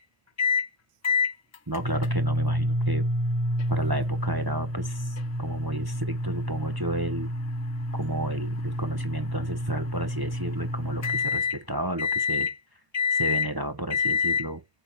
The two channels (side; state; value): left; late; 1.1 ms